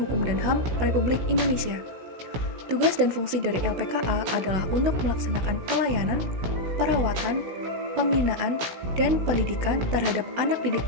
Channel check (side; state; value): left; late; 16 ms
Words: dan HAM Republik Indonesia. Tugas dan fungsi dari LPKA adalah untuk melaksanakan pelayanan, perawatan, pembinaan, dan pendidikan terhadap anak didik